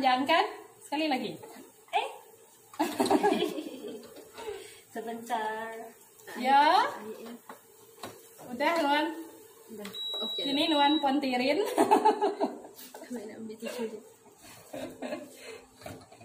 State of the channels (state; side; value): identical; both; correlation 1.00